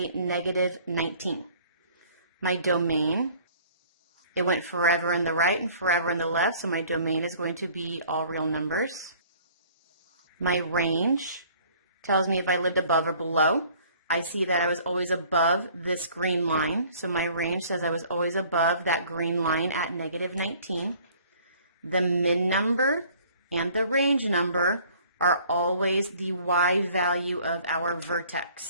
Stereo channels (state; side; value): inverted; both; correlation -0.54